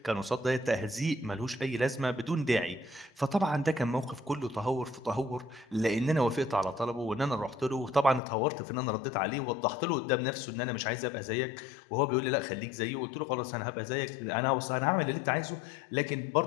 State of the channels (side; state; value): right; drops out; at 8.2 s